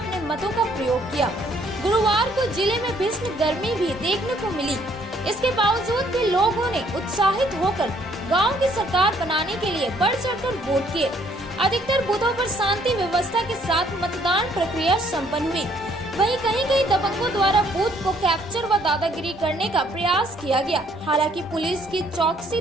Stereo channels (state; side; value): normal; both; correlation 0.65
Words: मतों का प्रयोग किया। गुरुवार को जिले में भीषण गर्मी भी देखने को मिली। इसके बावजूद भी लोगों ने उत्साहित होकर गाँव की सरकार बनाने के लिए बढ़ चढ़कर वोट किए। अधिकतर बूथों पर शांति व्यवस्था के साथ मतदान प्रक्रिया संपन्न हुई। वहीं कहीं दबंगों द्वारा बूथ को कैप्चर व दादागिरी करने का प्रयास किया गया। हालांकि पुलिस की चौकसी